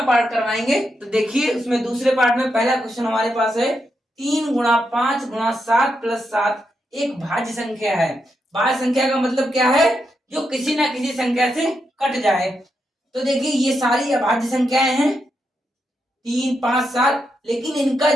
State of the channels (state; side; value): normal; both; correlation 0.83